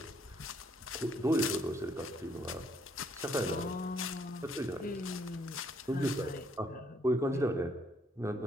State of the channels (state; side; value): normal; both; correlation 0.69